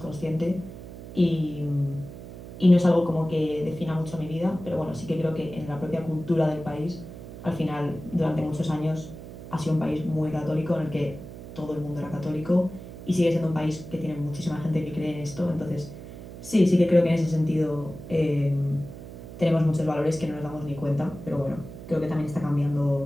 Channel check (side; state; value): right; noise; hum, 13 dB below the sound